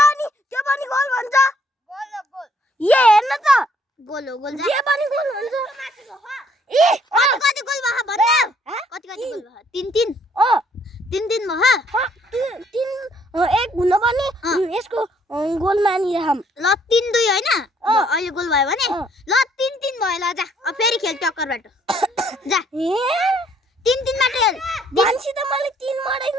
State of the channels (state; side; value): normal; both; correlation 0.65